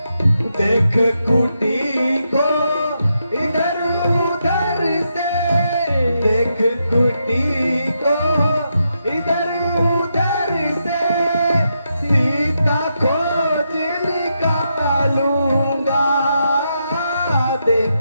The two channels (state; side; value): inverted; both; correlation -0.83